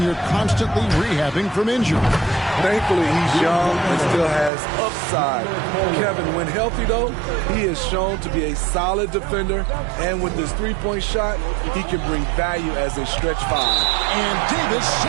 you're constantly rehabbing from injury. Thankfully, he's young and still has upside. Kevin, when healthy, though, he is shown to be a solid defender. And with this three-point shot, he can bring value as a stretch 5. And Davis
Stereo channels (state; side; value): drops out; left; at 4.5 s